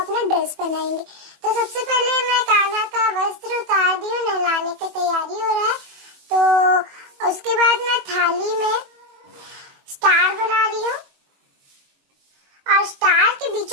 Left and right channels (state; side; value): late; left; 21 ms